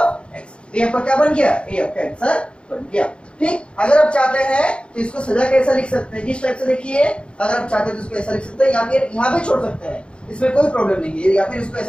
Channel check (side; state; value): right; late; 0.057 ms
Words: ये आपका क्या बन गया, ये आपका आंसर बन गया। ठीक, अगर आप चाहते हैं तो इसको सजा कैसा लिख सकते हैं, किस टाइप से देखिए, अगर आप चाहते हैं तो इसको ऐसा लिख सकते हैं, या फिर यहाँ पे छोड़ सकते हैं, इसमें कोई प्रॉब्लम नहीं है, या फिर इसको